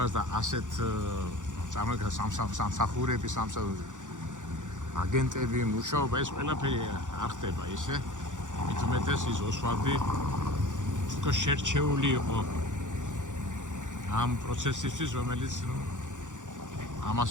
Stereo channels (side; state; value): left; late; 0.86 ms